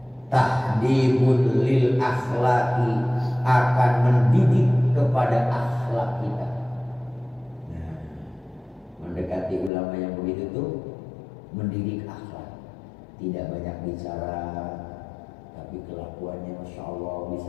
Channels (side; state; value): right; drops out; at 9.7 s